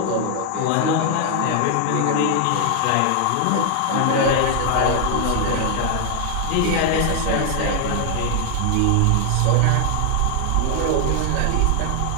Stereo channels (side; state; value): both; different; correlation 0.00